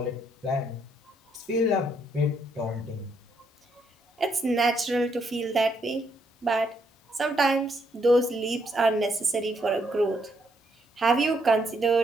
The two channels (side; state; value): both; normal; correlation 0.74